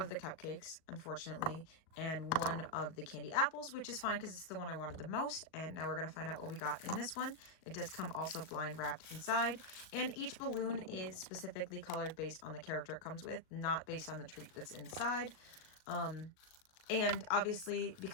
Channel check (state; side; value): late; right; 38 ms